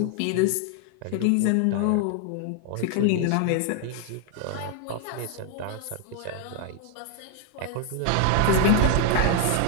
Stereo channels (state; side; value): different; both; correlation 0.00